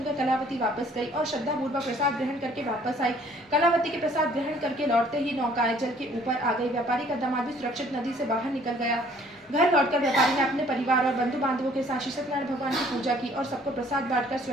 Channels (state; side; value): normal; both; correlation 0.58